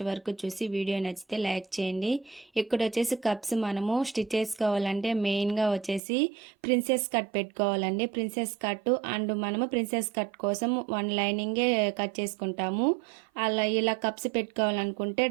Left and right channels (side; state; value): left; drops out; at 6.0 s